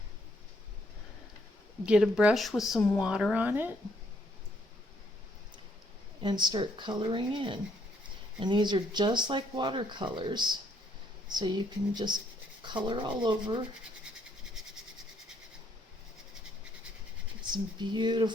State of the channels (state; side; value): normal; both; correlation 0.70